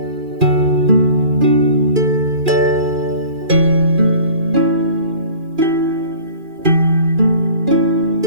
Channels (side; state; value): left; late; 2.4 ms